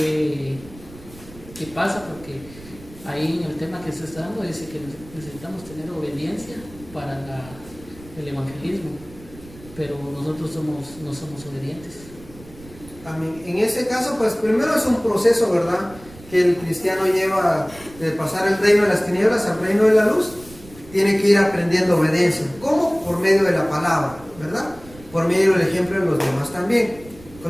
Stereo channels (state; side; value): noise; right; rumble, 20 dB below the sound